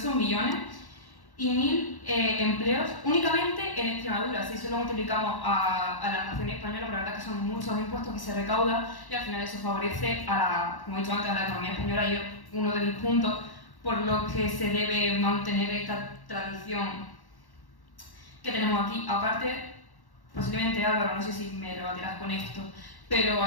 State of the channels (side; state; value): right; late; 1.1 ms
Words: millones y 1.000 empleos únicamente en Extremadura. Si eso lo multiplicamos a la nación española, la verdad que son muchos impuestos que se recaudan y al final eso favorece como he dicho antes, a la economía española, y es uno de mis puntos por los que se debe mantener esta tradición que tenemos aquí. Aparte, posiblemente Álvaro, no sé si me rebatirás con esto, pero